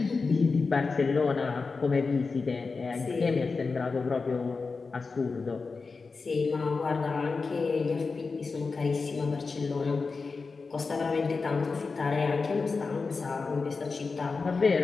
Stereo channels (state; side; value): quieter; right; 4.4 dB